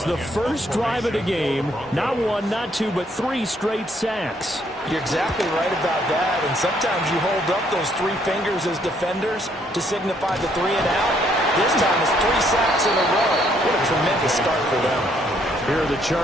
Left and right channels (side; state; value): both; normal; correlation 0.69